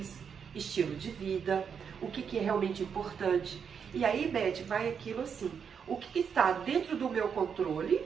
estilo de vida, o que é realmente importante. E aí, Beth, vai aquilo assim, o que está dentro do meu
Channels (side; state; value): left; quieter; 6.9 dB